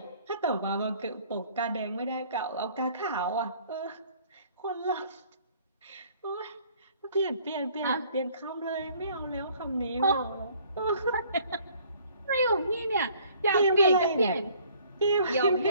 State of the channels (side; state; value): both; inverted; correlation -0.57